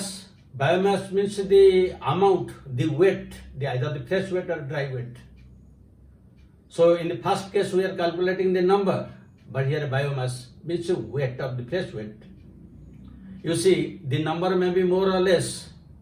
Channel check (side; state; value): both; identical; correlation 1.00